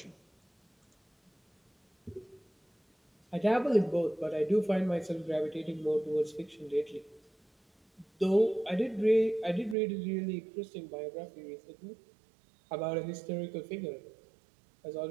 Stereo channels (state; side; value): drops out; left; at 9.8 s